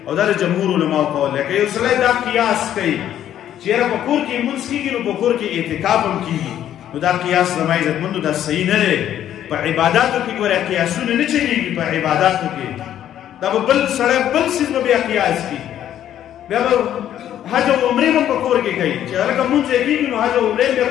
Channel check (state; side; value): quieter; right; 11.1 dB